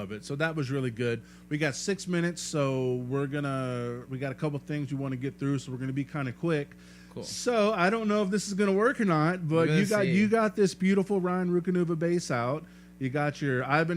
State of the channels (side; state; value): both; identical; correlation 1.00